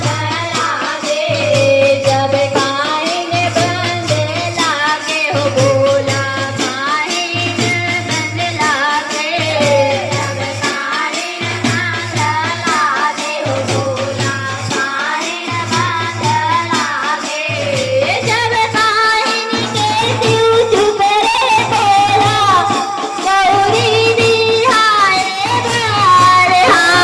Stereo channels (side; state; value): both; identical; correlation 1.00